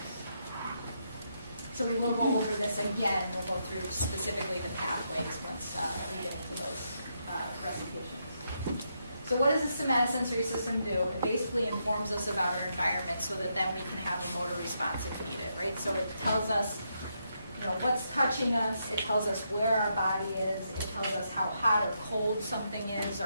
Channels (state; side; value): inverted; both; correlation -0.80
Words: So we will go over this again. We'll go through specifically the pathways once we get into those recitations. So what does the somatosensory system do? It basically informs us about our environment so that then we can have a motor response if needed, right? So it tells us what's touching us, it tells us where our body is, it tells us how hot or cold something is,